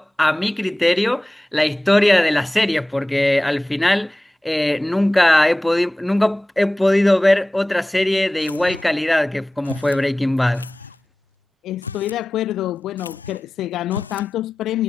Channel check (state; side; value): normal; both; correlation 0.96